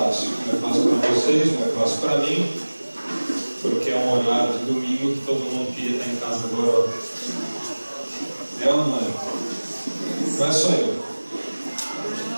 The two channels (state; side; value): inverted; both; correlation -1.00